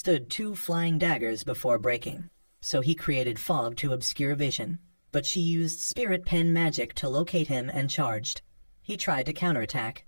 2 flying daggers before breaking. So he created fog to obscure vision, but she used spirit pen magic to locate him and charged. He tried to counterattack,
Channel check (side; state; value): both; inverted; correlation -1.00